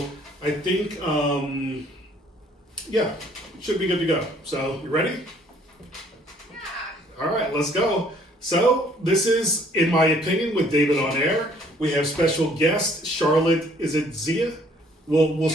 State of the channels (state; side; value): normal; both; correlation 0.60